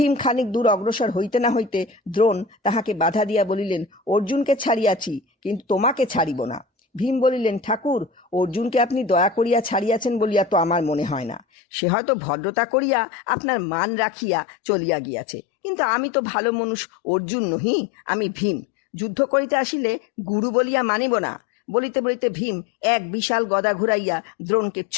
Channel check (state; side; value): drops out; right; at 11.4 s